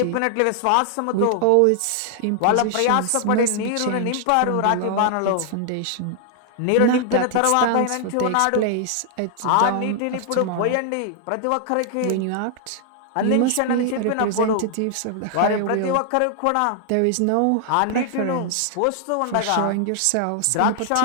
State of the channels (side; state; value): both; different; correlation 0.00